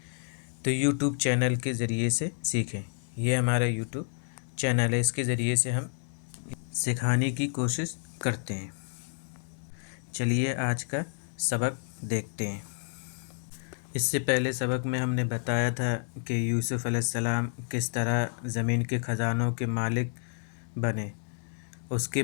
تو یوٹیوب چینل کے ذریعے سے سیکھیں۔ یہ ہمارا یوٹیوب چینل ہے، اس کے ذریعے سے ہم سکھانے کی کوشش کرتے ہیں۔ چلیے آج کا سبق دیکھتے ہیں۔ اس سے پہلے سبق میں ہم نے بتایا تھا کہ یوسف علیہ السلام کس طرح زمین کے خزانوں کے مالک بنے۔ اس کے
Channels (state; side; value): silent; right; digital silence